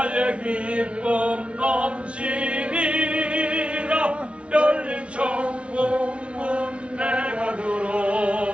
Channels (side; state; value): left; late; 0.060 ms